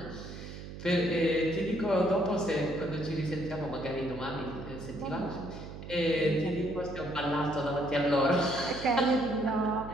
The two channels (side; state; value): right; noise; hum, 11 dB below the sound